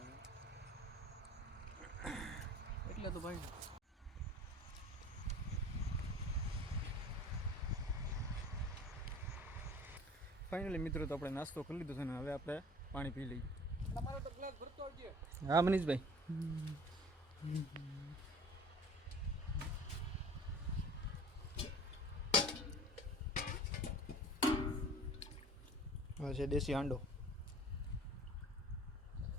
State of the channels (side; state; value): both; normal; correlation 0.44